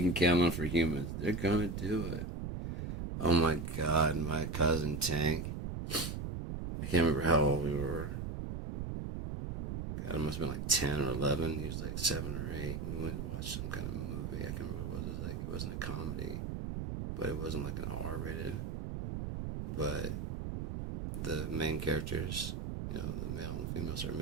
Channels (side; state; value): right; noise; rumble, 4 dB below the sound